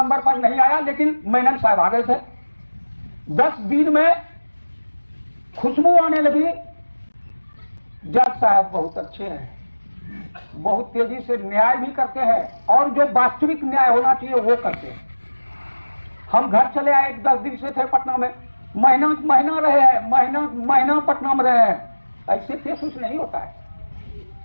पर नहीं आया, लेकिन मेनन साहब आ गए थे। 10 दिन में खुशबू आने लगी। जज साहब बहुत अच्छे हैं, बहुत तेजी से न्याय भी करते हैं और जो वास्तविक न्याय होना चाहिए वो करते हैं। हम घर चले आए, 10 दिन से थे पटना में, महीना रहे हैं, महीना पटना में रहे हैं। ऐसे केस कुछ नहीं होता है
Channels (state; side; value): inverted; both; correlation -1.00